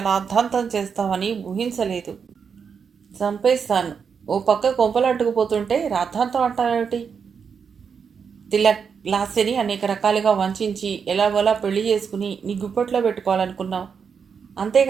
రాద్ధాంతం చేస్తావని ఊహించలేదు. చంపేస్తాను. ఓ పక్క కొంపలు అడ్డుకుపోతుంటే రాద్ధాంతం అంటావేమిటి? తిలక్, లాస్యని అనేక రకాలుగా వంచి ఎలాగోలా పెళ్లి చేసుకుని నీ గుప్పట్లో పెట్టుకోవాలనుకున్నావు.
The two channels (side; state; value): left; quieter; 6.4 dB